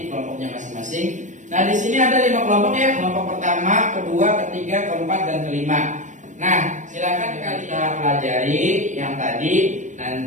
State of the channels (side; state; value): left; late; 0.36 ms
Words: kelompoknya masing-masing. Nah, di sini ada 5 kelompok ya. Kelompok pertama, kedua, ketiga, keempat dan kelima. Nah, silakan kita pelajari yang tadi.